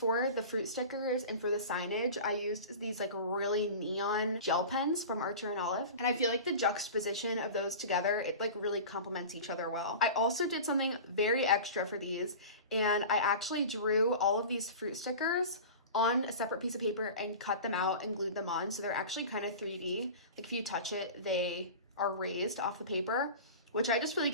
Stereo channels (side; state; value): both; inverted; correlation -0.34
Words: the fruit stickers and for the signage, I used these like really neon gel pens from Archer and Olive. And I feel like the juxtaposition of those together, it like really complements each other well. I also did something very extra for these, and I actually drew all of these fruit stickers on a separate piece of paper and cut them out and glued them on. So they're actually kind of 3D. Like if you touch it, they are raised off the paper, which I just feel like